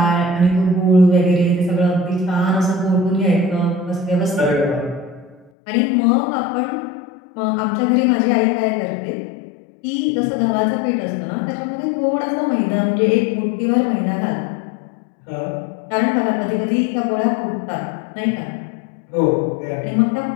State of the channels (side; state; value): right; drops out; at 5.5 s